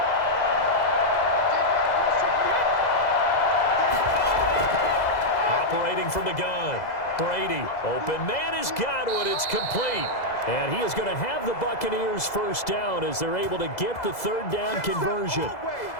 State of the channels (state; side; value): late; right; 2.0 ms